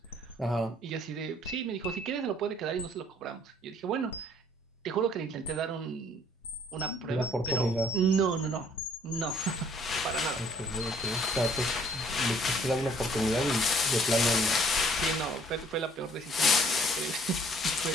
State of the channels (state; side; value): normal; both; correlation 0.60